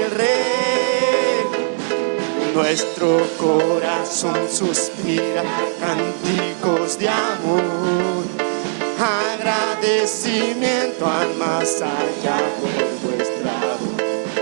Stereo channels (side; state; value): left; silent; digital silence